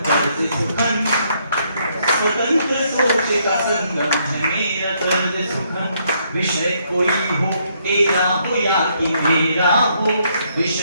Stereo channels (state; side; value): inverted; both; correlation -0.72